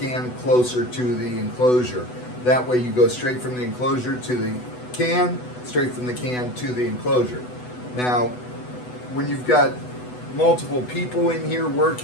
closer to the enclosure. That way you go straight from the enclosure to the can, straight from the can to the enclosure. Now, when you've got multiple people in here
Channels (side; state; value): right; late; 8.0 ms